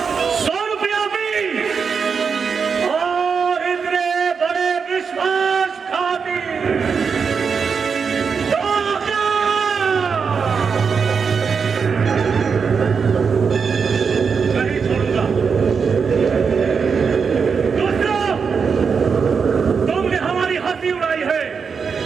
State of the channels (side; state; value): left; quieter; 5.8 dB